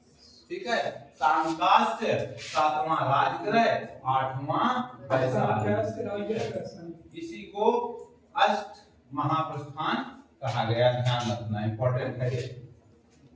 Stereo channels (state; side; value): identical; both; correlation 1.00